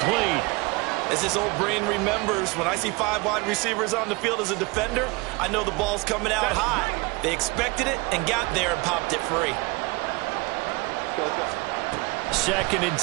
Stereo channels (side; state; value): left; quieter; 26.0 dB